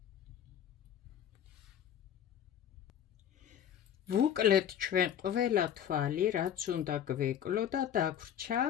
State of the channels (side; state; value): right; quieter; 9.6 dB